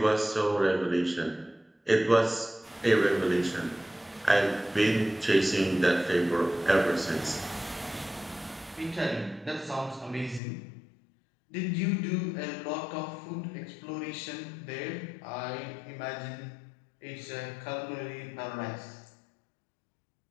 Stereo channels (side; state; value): right; drops out; at 10.4 s